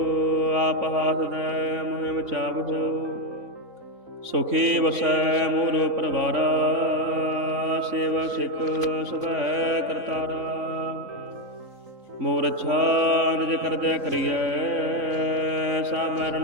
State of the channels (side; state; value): left; late; 3.9 ms